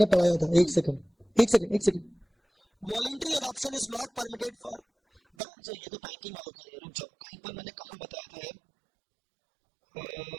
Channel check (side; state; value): left; drops out; at 5.2 s